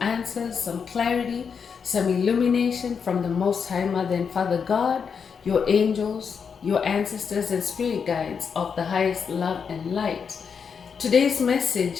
answers, some clarity, some illumination from the Most High Mother and Father God, your angels, your ancestors, and spirit guides of the highest love and light. Today's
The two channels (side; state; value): right; quieter; 6.3 dB